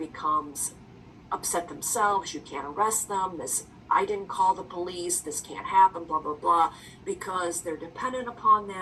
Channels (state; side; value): identical; both; correlation 1.00